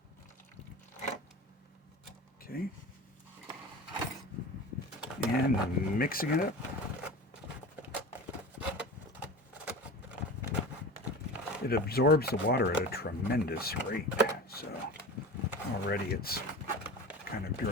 Okay. And mixing it up. It absorbs the water at a tremendous rate, so already it's kind of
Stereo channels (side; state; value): both; normal; correlation 0.33